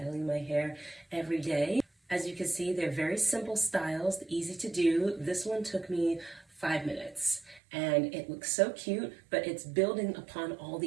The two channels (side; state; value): left; drops out; at 7.6 s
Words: my hair every day. As you can see, they're very simple styles, easy to do. This one took me 5 minutes and it looks so cute, but it's building upon all